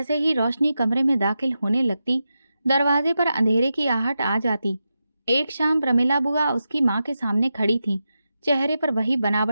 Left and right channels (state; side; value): inverted; both; correlation -0.90